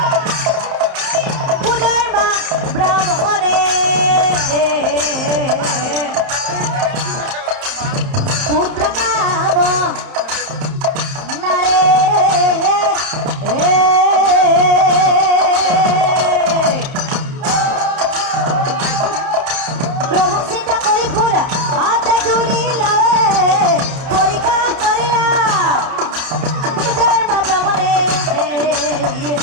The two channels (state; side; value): late; left; 31 ms